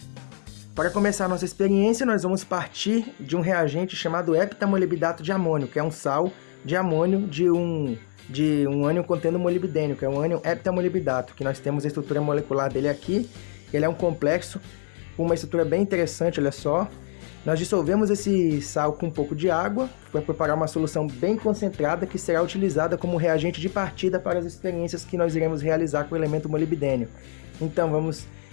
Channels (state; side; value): silent; right; digital silence